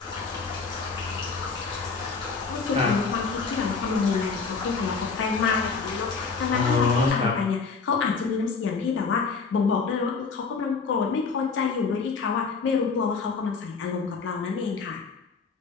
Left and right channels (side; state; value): right; quieter; 4.9 dB